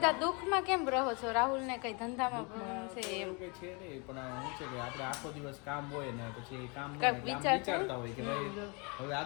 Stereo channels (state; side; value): quieter; right; 31.6 dB